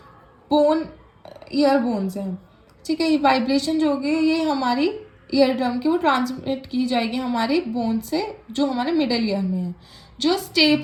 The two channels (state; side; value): identical; both; correlation 1.00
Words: बोन, ईयर बोन्स हैं, ठीक है। ये वाइब्रेशन जो होगी ये हमारी ईयर ड्रम की वो ट्रांसमिट की जाएगी हमारे बोन से, जो हमारे मिडल ईयर में है। जो